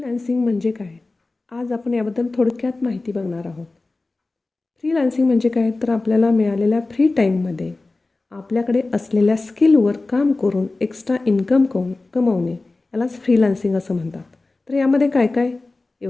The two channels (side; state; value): right; quieter; 3.3 dB